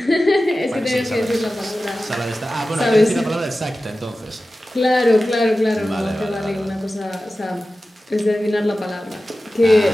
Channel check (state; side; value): normal; both; correlation 0.95